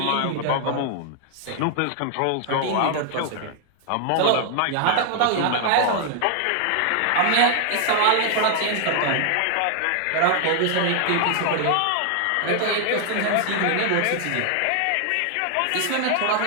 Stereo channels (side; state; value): both; different; correlation 0.00